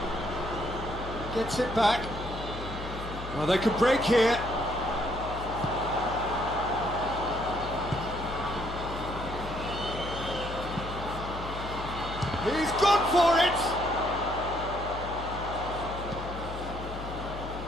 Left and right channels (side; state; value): left; noise; hum, 9 dB below the sound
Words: Gets it back. Well, they could break here. He's gone for it.